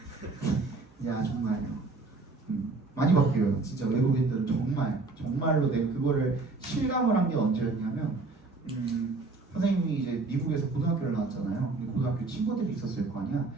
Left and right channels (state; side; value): quieter; left; 3.6 dB